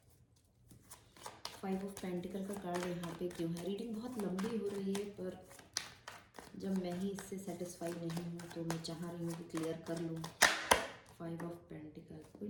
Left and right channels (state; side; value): identical; both; correlation 1.00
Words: 5 ऑफ पेंटिकल का कार्ड यहाँ पे क्यों है? रीडिंग बहुत लंबी हो रही है, पर जब मैं ही इससे सेटिस्फाई नहीं हूँ तो मैं चाह रही हूँ कि क्लियर कर लूँ। 5 of pentacle,